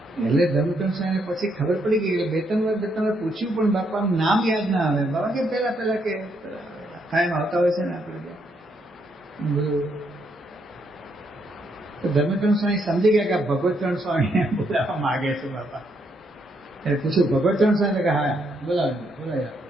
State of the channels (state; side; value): normal; both; correlation 0.75